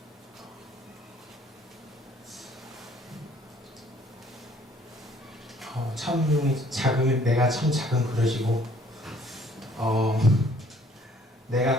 참 내가 참 작은 그릇이고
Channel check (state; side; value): normal; both; correlation 0.59